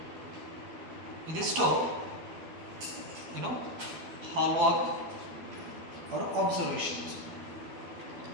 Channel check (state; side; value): late; left; 12 ms